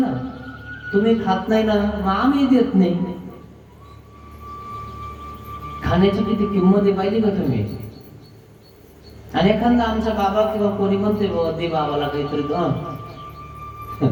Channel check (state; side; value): identical; both; correlation 1.00